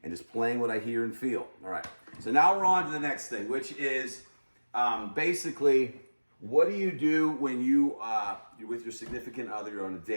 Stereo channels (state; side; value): inverted; both; correlation -1.00